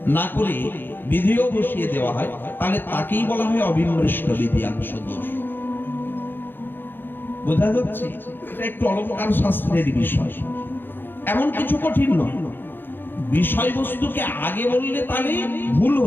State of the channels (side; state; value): right; late; 0.098 ms